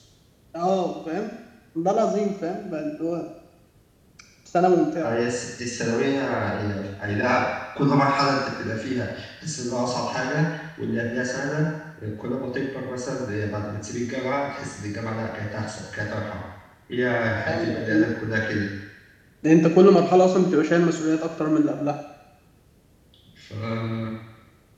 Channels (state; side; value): identical; both; correlation 1.00